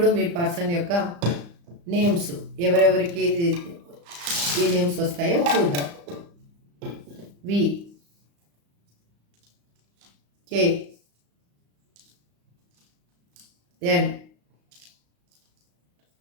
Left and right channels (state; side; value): late; left; 35 ms